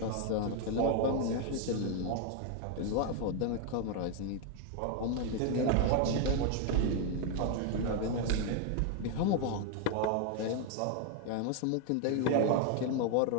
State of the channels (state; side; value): different; both; correlation 0.01